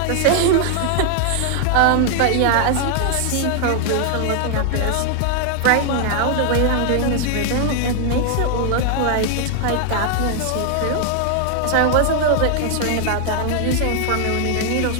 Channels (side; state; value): both; different; correlation 0.00